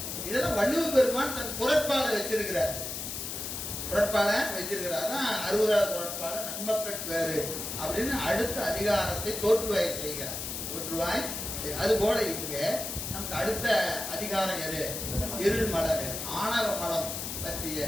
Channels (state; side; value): noise; left; hiss, 5 dB below the sound